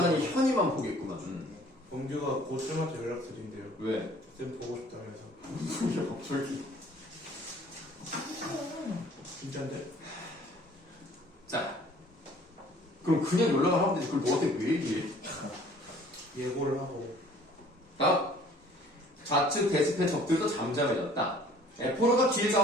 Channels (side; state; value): both; normal; correlation 0.53